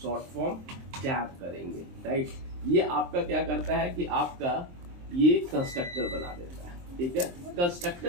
शॉर्ट फॉर्म टैब करेंगे, राइट। ये आपका क्या करता है कि आपका ये कंस्ट्रक्टर बना देता है, ठीक है।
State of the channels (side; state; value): left; late; 23 ms